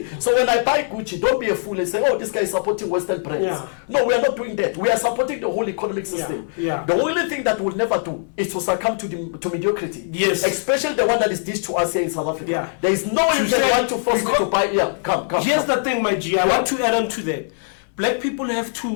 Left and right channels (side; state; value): right; silent; digital silence